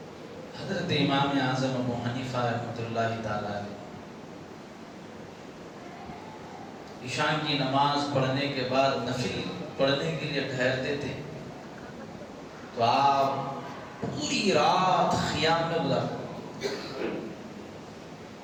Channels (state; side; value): identical; both; correlation 1.00